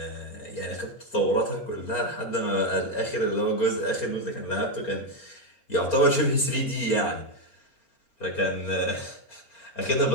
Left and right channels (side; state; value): right; late; 4.4 ms